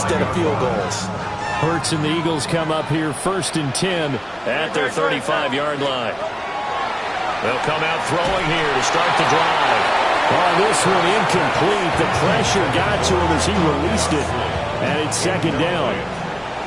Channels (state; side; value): identical; both; correlation 1.00